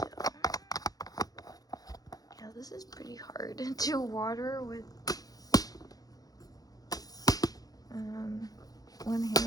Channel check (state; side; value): late; right; 0.18 ms